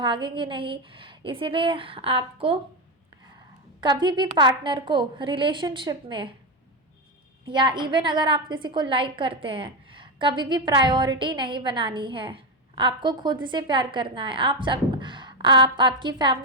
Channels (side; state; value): both; normal; correlation 0.11